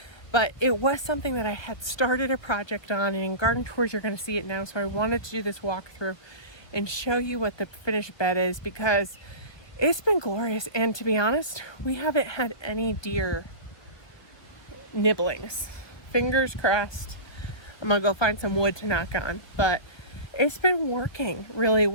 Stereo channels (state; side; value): late; right; 1.5 ms